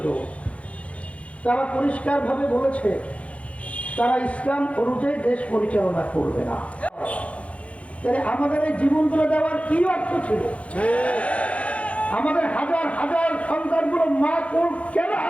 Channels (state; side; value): late; right; 0.064 ms